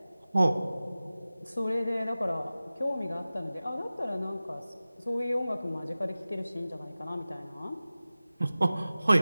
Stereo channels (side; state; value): both; inverted; correlation -0.96